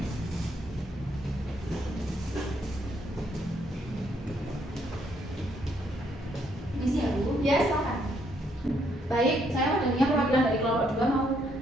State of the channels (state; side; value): normal; both; correlation 0.72